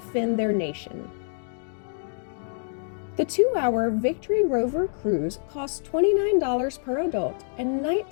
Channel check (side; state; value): right; silent; digital silence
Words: their nation. The 2-hour Victory Rover cruise costs $29 per adult and